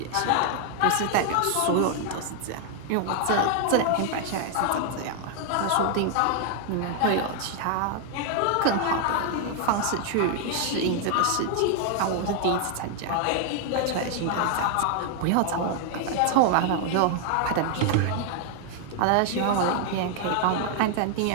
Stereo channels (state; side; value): different; both; correlation 0.00